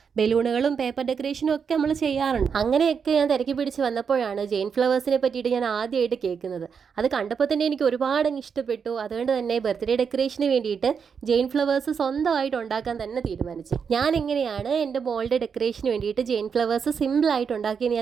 ബലൂണുകളും പേപ്പർ ഡെക്കറേഷനും ഒക്കെ നമ്മൾ ചെയ്യാറുണ്ട്. അങ്ങനെയൊക്കെ ഞാൻ തിരക്കി പിടിച്ച് വന്നപ്പോഴാണ് ജെയിൻ ഫ്ലവേഴ്സിനെ പറ്റിയിട്ട് ഞാൻ ആദ്യമായിട്ട് കേൾക്കുന്നത്. അത് കണ്ടപ്പോൾ തന്നെ എനിക്ക് ഒരുപാട് ഇഷ്ടപ്പെട്ടു. അതുകൊണ്ട് തന്നെ ബർത്ത്ഡേ ഡെക്കറേഷന് വേണ്ടിയിട്ട് ജെയിൻ ഫ്ലവേഴ്സ് സ്വന്തമായിട്ട് ഉണ്ടാക്കാൻ തന്നെ തീരുമാനിച്ചു. ഞാൻ എങ്ങനെയാണ് എൻ്റെ മോളുടെ ഡെക്കറേഷന് വേണ്ടിയിട്ട് ജെയിൻ ഫ്ലവേഴ്സ് സിമ്പിളായിട്ട് ഉണ്ടാക്കിയെന്ന്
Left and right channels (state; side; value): quieter; left; 6.4 dB